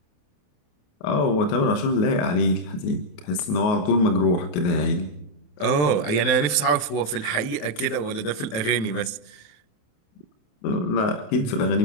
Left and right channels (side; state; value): right; late; 28 ms